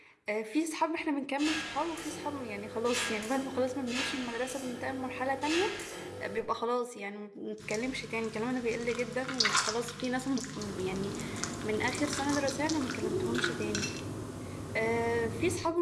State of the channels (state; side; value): identical; both; correlation 1.00